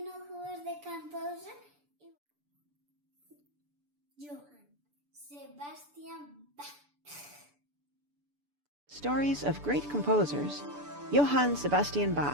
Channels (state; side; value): late; left; 6.9 ms